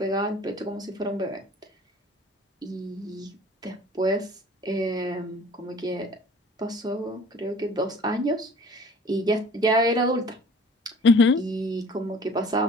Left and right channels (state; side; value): normal; both; correlation 0.48